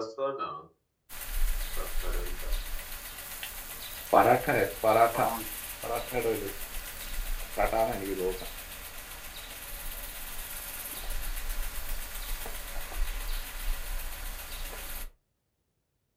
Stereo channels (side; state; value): both; identical; correlation 1.00